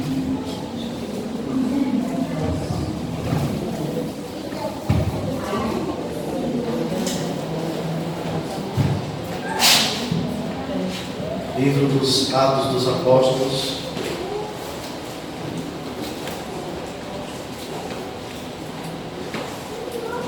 Livro dos Atos dos Apóstolos.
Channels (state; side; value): identical; both; correlation 1.00